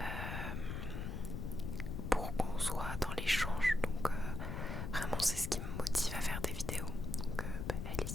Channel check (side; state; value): left; noise; rumble, 4 dB below the sound